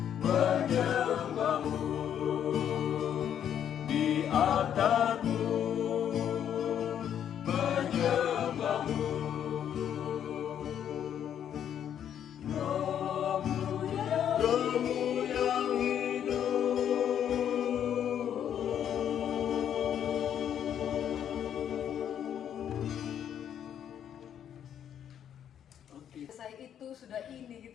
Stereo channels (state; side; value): quieter; right; 9.4 dB